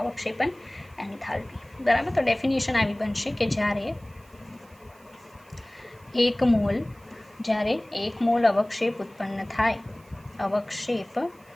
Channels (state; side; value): noise; right; hiss, 29 dB below the sound